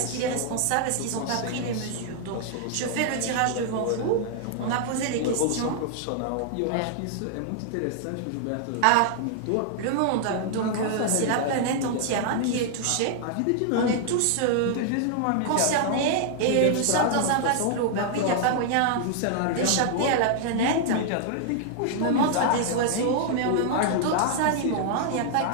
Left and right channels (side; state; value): both; different; correlation -0.01